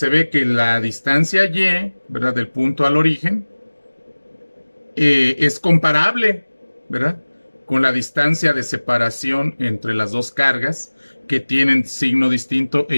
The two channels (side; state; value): both; inverted; correlation -1.00